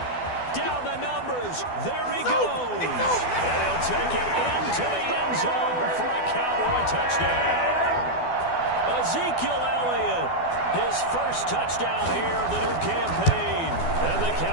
Down the numbers. There he goes. And he'll take it into the end zone for a Cowboy touchdown. Ezekiel Elliott, his first touchdown here of the new campaign. And the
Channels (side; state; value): right; late; 12 ms